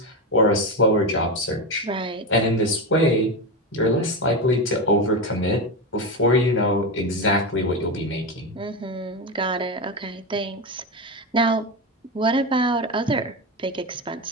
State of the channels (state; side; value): normal; both; correlation 0.15